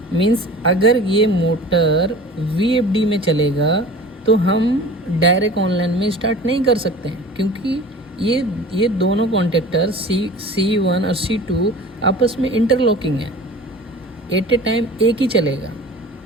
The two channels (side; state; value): both; normal; correlation 0.41